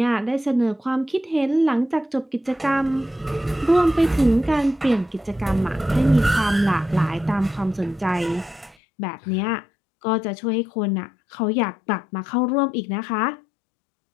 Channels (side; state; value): right; drops out; at 8.8 s